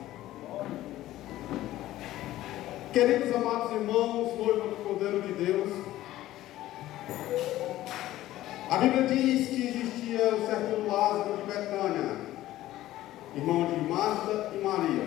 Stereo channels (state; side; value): quieter; right; 14.9 dB